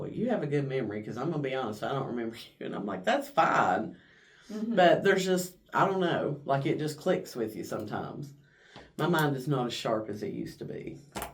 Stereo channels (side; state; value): both; identical; correlation 1.00